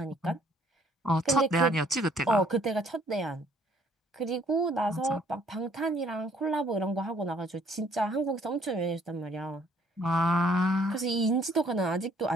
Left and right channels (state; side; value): normal; both; correlation 0.62